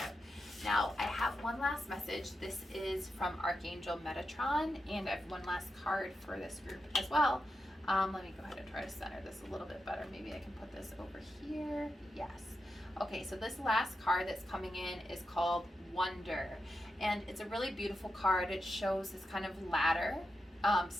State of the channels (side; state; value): both; normal; correlation 0.88